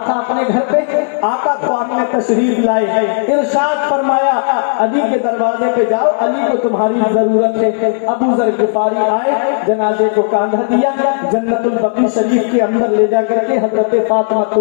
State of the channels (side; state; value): right; silent; digital silence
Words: تھا اپنے گھر پہ, آقا تو آپ نے تشریف لائے. ارشاد فرمایا علی کے دروازے پہ جاؤ, علی کو تمہاری ضرورت ہے. ابو ذر غفاری آئے, جنازے کو کاندھا دیا, جنت البقیع شریف کے اندر لے جا کر کے حضرت فاطمہ